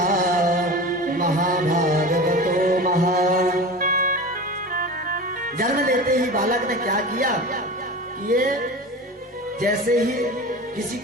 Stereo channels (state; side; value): normal; both; correlation 0.32